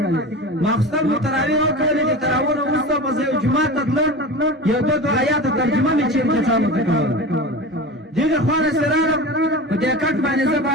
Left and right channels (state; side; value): normal; both; correlation 0.30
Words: ماخستن مو تراویح وکړلې د تراویح نه وروسته به زه یو جومات ته تلم یو دوه آیاته ترجمه مې چېرته چالو ته کوله دغه خوا نه چې راغلم په دې کټ باندې زه